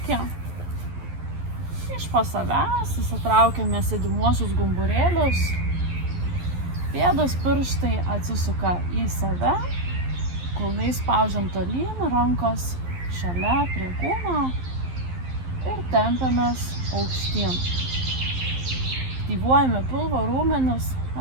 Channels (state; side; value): late; left; 11 ms